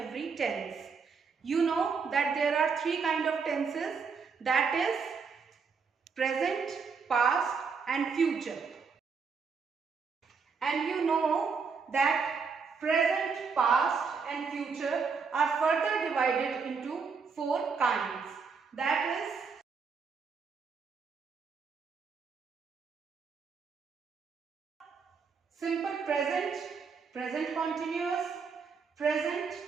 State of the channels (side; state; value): left; quieter; 5.4 dB